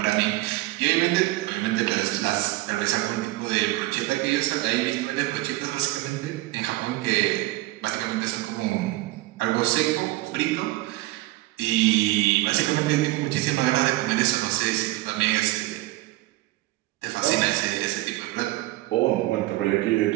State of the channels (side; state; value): left; quieter; 18.9 dB